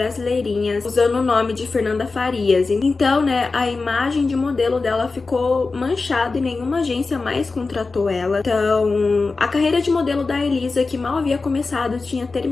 usando o nome de Fernanda Farias. Então, né, a imagem de modelo dela ficou manchada e nenhuma agência mais contratou ela. Então, a carreira de modelo da Elisa, que mal havia começado, tinha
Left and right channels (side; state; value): right; quieter; 4.0 dB